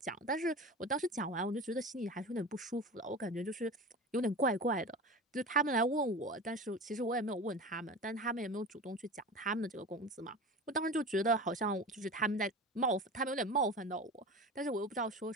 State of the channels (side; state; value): both; normal; correlation 0.32